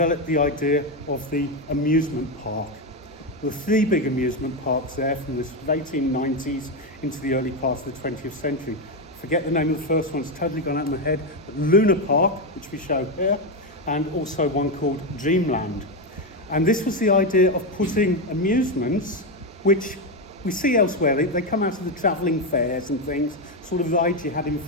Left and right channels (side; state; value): both; normal; correlation 0.09